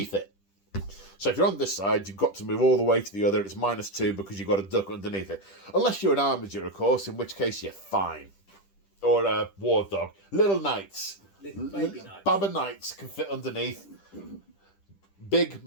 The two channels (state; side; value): late; right; 10 ms